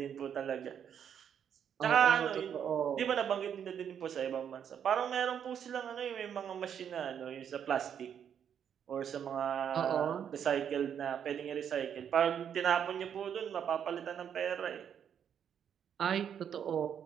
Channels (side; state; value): left; quieter; 8.5 dB